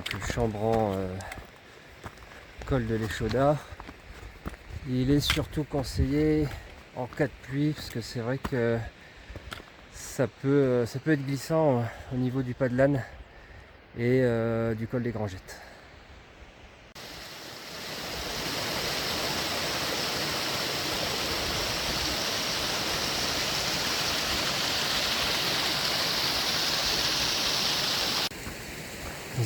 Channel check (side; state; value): both; identical; correlation 1.00